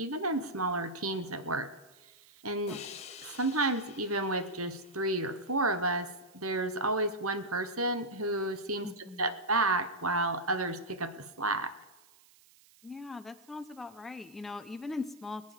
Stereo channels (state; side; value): noise; right; hiss, 27 dB below the sound